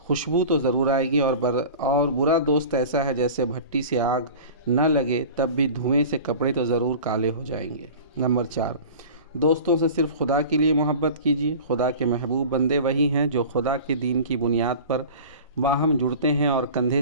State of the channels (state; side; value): inverted; both; correlation -0.38